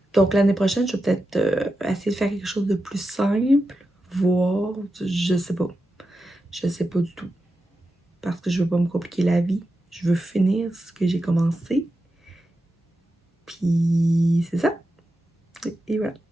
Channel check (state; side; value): normal; both; correlation 0.90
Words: Donc l'année prochaine, je vais peut-être essayer de faire quelque chose de plus simple, voir, je sais pas. Je sais pas du tout. Parce que je veux pas me compliquer la vie. Je veux finir ce que j'ai commencé. Puis c'est ça. Et voilà.